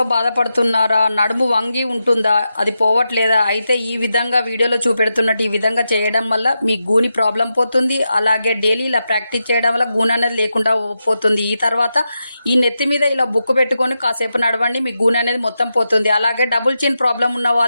బాధపడుతున్నారా? నడుము వంగి ఉంటుందా? అది పోవట్లేదా? అయితే ఈ విధంగా వీడియోలో చూపెడుతున్నట్టు ఈ విధంగా చేయడం వల్ల మీ గూని ప్రాబ్లం పోతుంది. అలాగే డైలీ ఇలా ప్రాక్టీస్ చేయడం వల్ల గూని అనేది లేకుండా పోతుంది. ఈ తర్వాత ఈ నెత్తి మీద ఇలా బుక్కు పెట్టుకొని కాసేపు నడవండి, మీ గూని అనేది మొత్తం పోతుంది. అలాగే డబుల్ చిన్ ప్రాబ్లం ఉన్న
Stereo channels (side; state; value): both; inverted; correlation -0.88